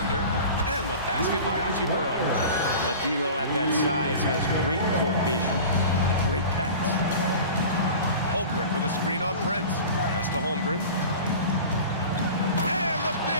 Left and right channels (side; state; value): both; inverted; correlation -0.37